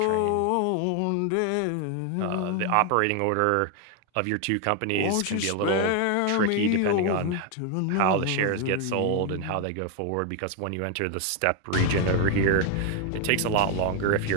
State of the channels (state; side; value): different; both; correlation 0.01